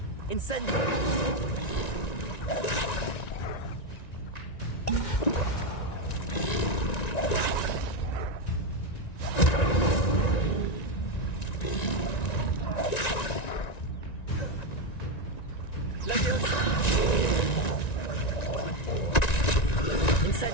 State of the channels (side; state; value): right; late; 1.9 ms